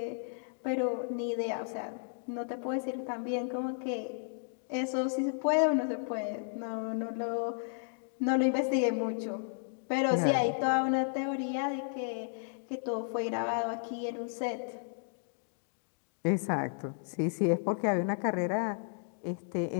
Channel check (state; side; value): silent; right; digital silence